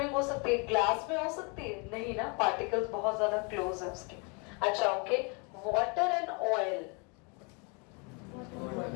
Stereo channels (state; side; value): quieter; right; 33.0 dB